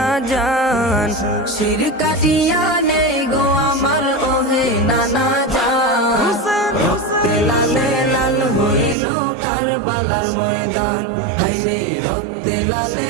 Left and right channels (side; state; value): left; drops out; at 9.0 s